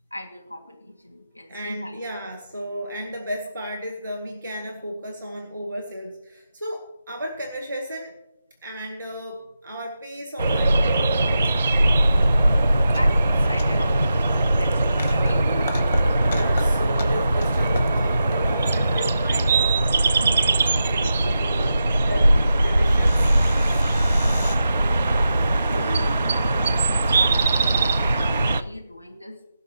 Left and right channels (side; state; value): both; inverted; correlation -0.89